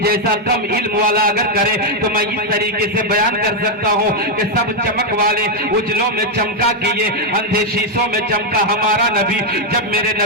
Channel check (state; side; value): normal; both; correlation 0.01